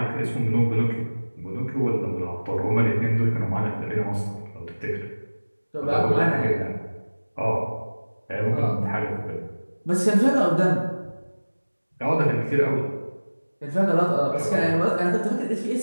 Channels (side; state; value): both; inverted; correlation -1.00